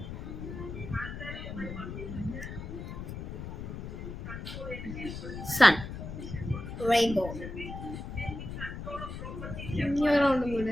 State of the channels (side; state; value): left; noise; rumble, 8 dB below the sound